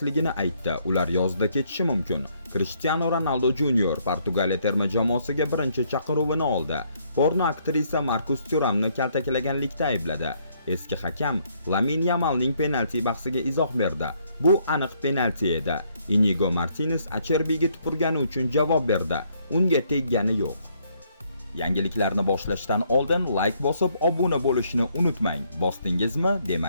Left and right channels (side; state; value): both; inverted; correlation -0.69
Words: aytdi. Ular yozda ketishi mumkin. Cristiano Ronaldo Junior Portugaliya terma jamoasiga birinchi chaqiruvini oldi. Porno aktrisa Marcus Thuramni kaltaklaganlikda aybladi. Eski hakam Lamine Yamalning penalti bahsiga izoh berdi. Bu aniq penalti edi. Inigo Martinez Acherbiga tupurgani uchun javob berdi. Unga teggani yo'q. Yangiliklarni boshlashdan oldin like bosib, obuna bo'lishni unutmang. Bosdingizmi?